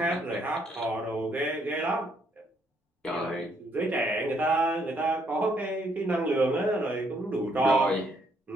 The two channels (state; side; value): normal; both; correlation 0.70